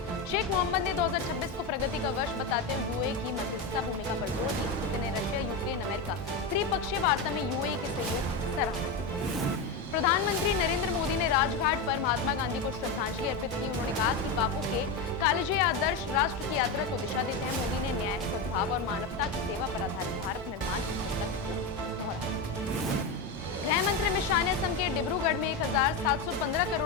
शेख मोहम्मद ने 2026 को प्रगति का वर्ष बताते हुए यूएई की मध्यस्थता भूमिका पर जोर दिया। पुतिन ने रशिया, यूक्रेन, अमेरिका त्रिपक्षीय वार्ता में यूएई के सहयोग की सराहना की। प्रधानमंत्री नरेंद्र मोदी ने राजघाट पर महात्मा गांधी को श्रद्धांजलि अर्पित की। उन्होंने कहा कि बापू के कालजे आदर्श राष्ट्र की यात्रा को दिशा देते हैं। मोदी ने न्याय, सद्भाव और मानवता की सेवा पर आधारित भारत निर्माण की संकल्प को दोहराया। गृह मंत्री अमित शाह ने असम के डिब्रूगढ़ में 1715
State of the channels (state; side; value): quieter; right; 3.8 dB